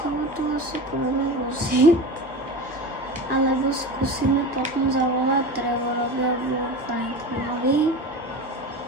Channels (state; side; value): normal; both; correlation 0.29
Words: tu asi budeme voziť. Alebo skúsime potom zavolať Trevorovi alebo Franklinovi.